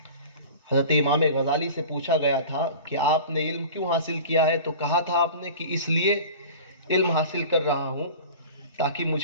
حضرت امام غزالی سے پوچھا گیا تھا کہ آپ نے علم کیوں حاصل کیا ہے؟ تو کہا تھا آپ نے کہ اس لیے علم حاصل کر رہا ہوں تاکہ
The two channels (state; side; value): inverted; both; correlation -0.38